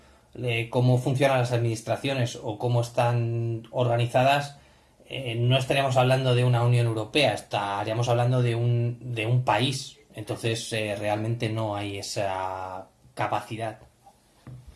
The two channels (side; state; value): both; identical; correlation 1.00